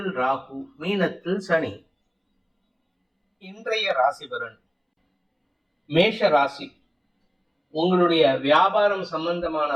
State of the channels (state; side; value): identical; both; correlation 1.00